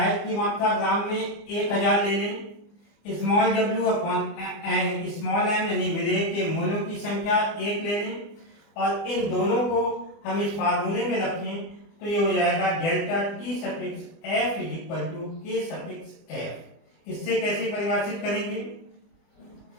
की मात्रा ग्राम में 1000 ले लें, small W upon small M यानी विलेय के मोलों की संख्या 1 ले लें और इन दोनों को हम इस फार्मूले में रखें तो ये हो जाएगा delta T suffix F is equal to K suffix F. इससे कैसे परिभाषित करेंगे,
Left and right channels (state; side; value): late; right; 25 ms